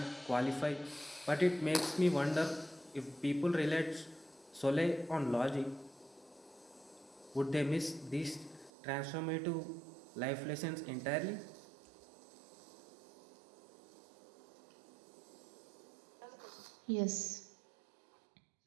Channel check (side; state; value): left; drops out; at 8.7 s